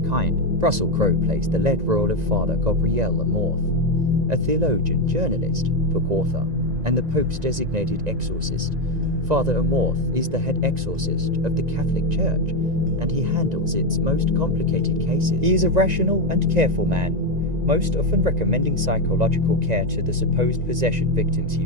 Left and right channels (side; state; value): left; late; 1.9 ms